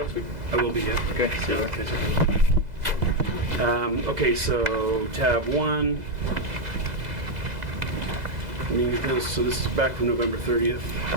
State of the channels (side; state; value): left; late; 2.0 ms